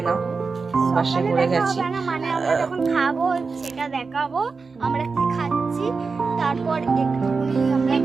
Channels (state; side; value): quieter; left; 4.6 dB